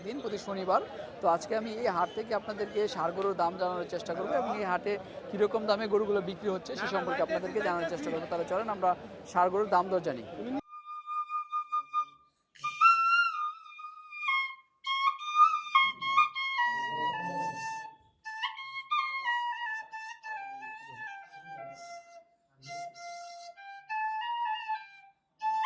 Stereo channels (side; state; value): both; identical; correlation 1.00